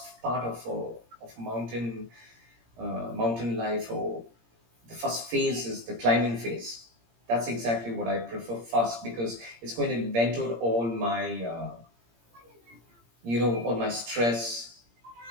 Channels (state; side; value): late; left; 17 ms